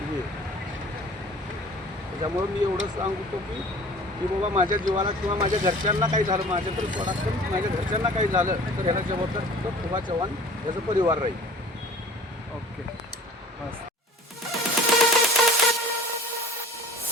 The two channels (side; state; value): both; normal; correlation 0.46